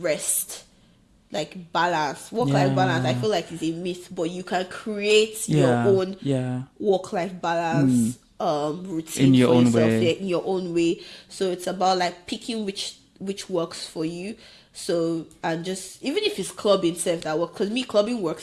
rest, like balance, work-life balance. I feel like it's a myth, but you can create your own work-life balance routine in your own way. In your own way. So it's about like picking which works for you. So, and just, even if it's clubbing itself that works, because clubbing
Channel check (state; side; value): identical; both; correlation 1.00